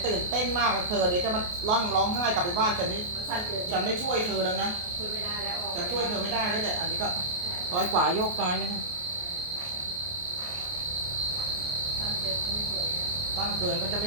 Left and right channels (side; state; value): left; late; 28 ms